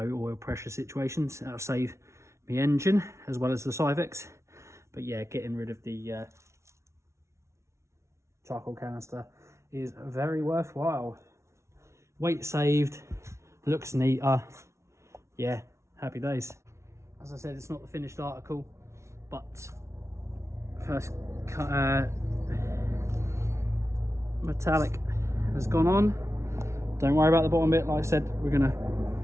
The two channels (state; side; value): late; left; 0.13 ms